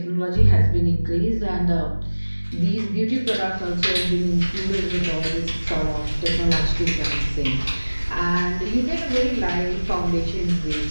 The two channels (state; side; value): inverted; both; correlation -1.00